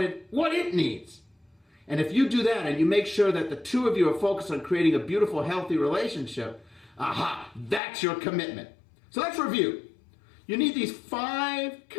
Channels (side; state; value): right; drops out; at 7.8 s